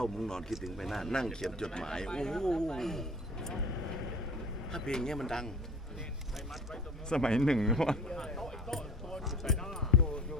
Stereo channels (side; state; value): both; normal; correlation 0.44